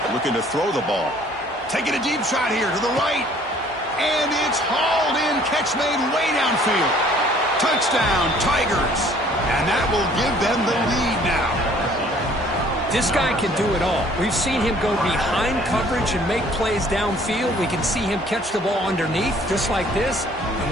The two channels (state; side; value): normal; both; correlation 0.57